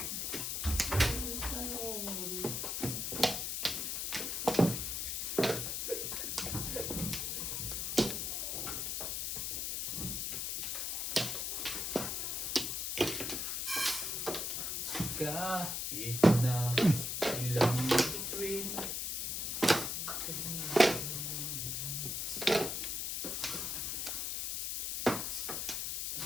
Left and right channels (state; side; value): noise; left; hiss, 1 dB below the sound